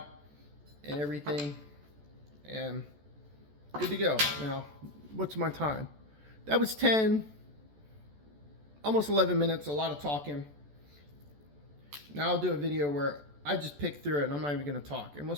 and everything, and good to go. Now, what's my time? That was 10, almost 11 minutes, a lot of talking. Now I'll do a video where I just pick through it and I'm not even gonna talk, and we'll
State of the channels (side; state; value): left; late; 14 ms